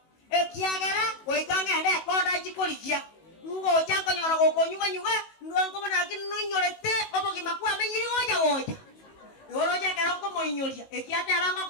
ekyagera goikanga ende koda chikolikia ngo chanko nyora gokonyuga ndwango mona kinunyorete obogi makwa menyiri goja Yoroja keroko moinyoria ekiate abango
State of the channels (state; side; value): late; right; 19 ms